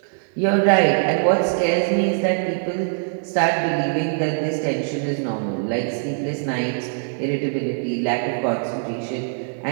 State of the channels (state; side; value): silent; left; 62 dB below the other